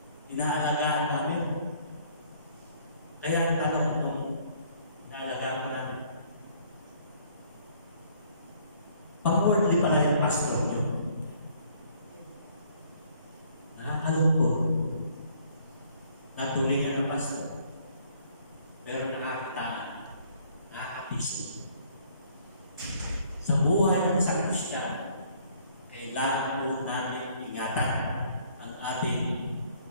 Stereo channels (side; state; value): both; inverted; correlation -0.61